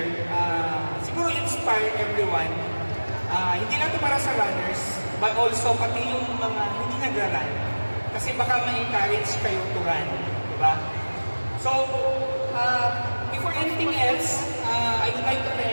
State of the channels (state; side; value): inverted; both; correlation -1.00